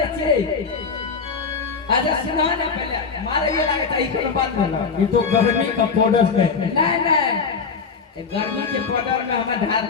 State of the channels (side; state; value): right; quieter; 5.3 dB